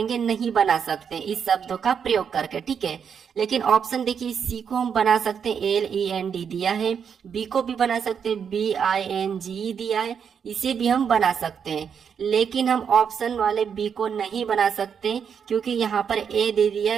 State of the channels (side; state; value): left; quieter; 7.2 dB